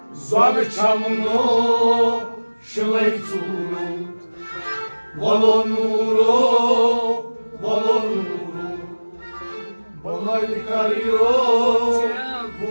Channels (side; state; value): both; inverted; correlation -1.00